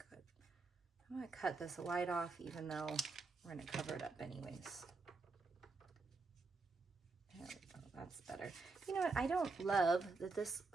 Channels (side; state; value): left; quieter; 3.9 dB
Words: Good. I'm gonna cut this light off even though we're gonna cover it up anyways. There we go, that's better. You know what, I don't love that this,